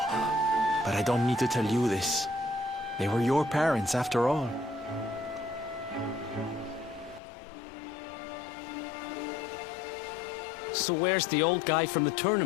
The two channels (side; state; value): right; drops out; at 7.2 s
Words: but I don't need to tell you this. They were your parents, after all. So where's the old guy from the